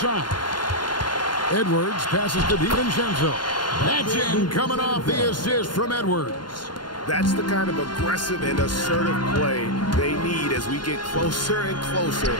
Edwards passes to DiVincenzo. That's in, coming off the assist from Edwards. That's the kind of aggressive and assertive play they need as we get closer and closer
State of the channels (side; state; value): right; late; 0.71 ms